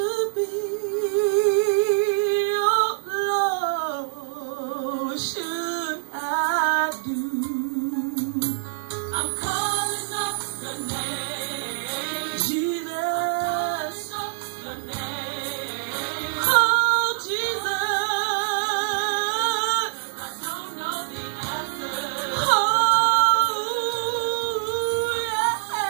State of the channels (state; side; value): silent; left; 62 dB below the other